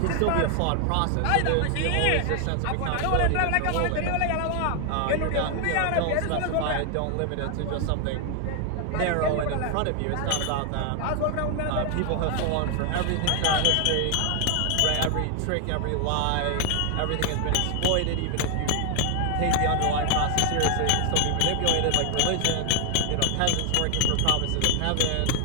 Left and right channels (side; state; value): both; different; correlation 0.00